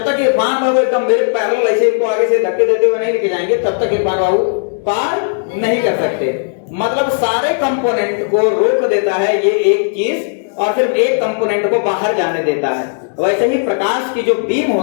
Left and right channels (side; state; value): right; silent; digital silence